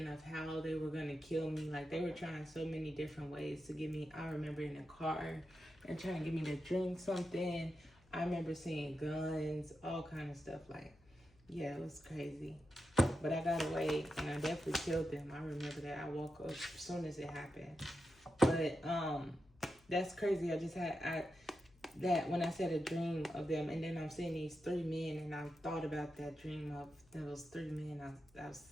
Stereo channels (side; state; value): left; noise; hum, 29 dB below the sound